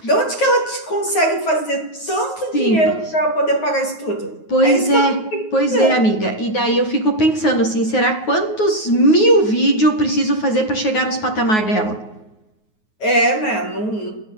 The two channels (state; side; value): late; right; 9.4 ms